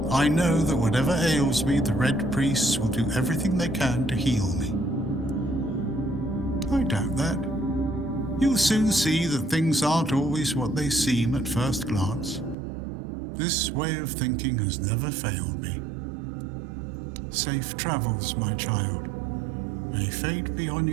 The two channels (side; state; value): left; drops out; at 12.6 s